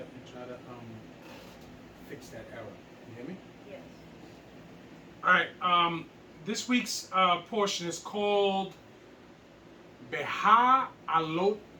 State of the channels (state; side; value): identical; both; correlation 1.00